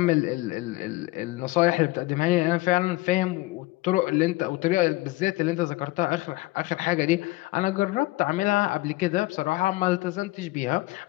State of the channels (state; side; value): quieter; right; 20.5 dB